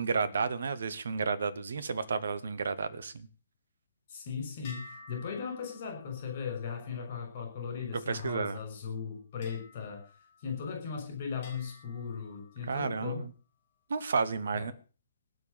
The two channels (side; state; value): both; inverted; correlation -0.72